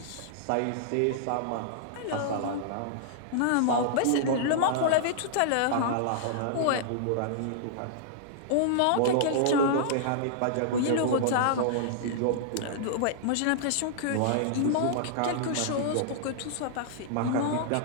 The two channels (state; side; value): different; both; correlation -0.01